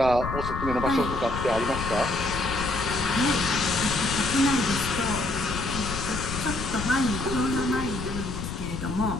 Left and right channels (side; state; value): left; noise; rumble, 6 dB below the sound